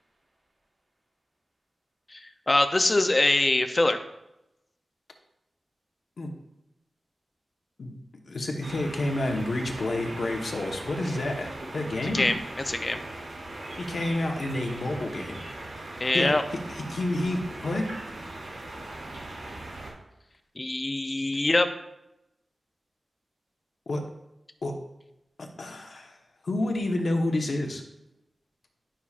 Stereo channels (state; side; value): normal; both; correlation 0.96